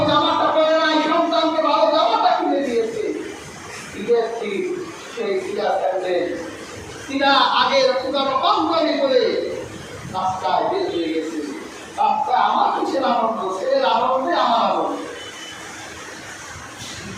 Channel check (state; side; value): identical; both; correlation 1.00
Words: জামাটা পরে নাই, সন্তানকে ভালো জামাটা কিনে দিয়েছে। ঈদের ঠিক সেই ক্রীড়া স্যান্ডেল তিনা আগের পুরানো পাঞ্জাবি করে রাস্তায় বের হয়ে গেছে। রাস্তায় আমার কিসের আনন্দ, ছেলের আনন্দে আমার আনন্দ।